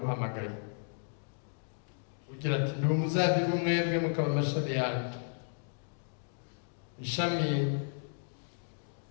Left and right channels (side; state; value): right; silent; digital silence